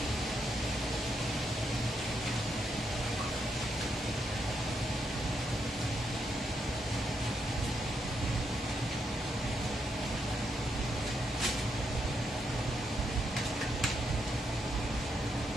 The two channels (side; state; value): both; normal; correlation 0.80